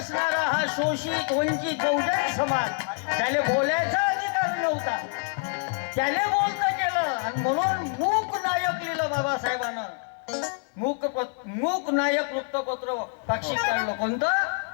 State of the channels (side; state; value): right; quieter; 37.7 dB